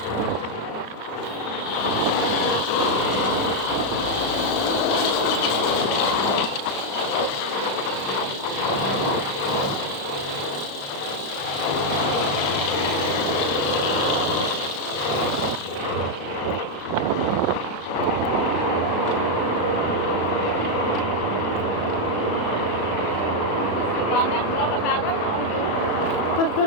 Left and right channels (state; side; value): late; right; 36 ms